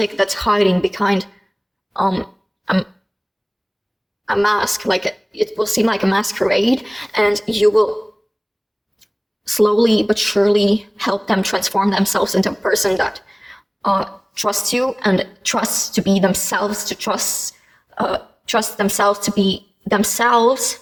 that's hiding behind a mask, like it will seem like a masquerade, and you will slowly but surely help them transform themselves into a person that trusts you and trusts to be themselves, to trust themselves to be themselves.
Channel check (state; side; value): identical; both; correlation 1.00